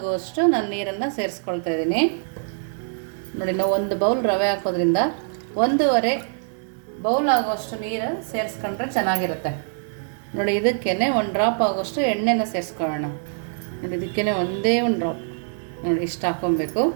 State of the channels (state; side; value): silent; left; digital silence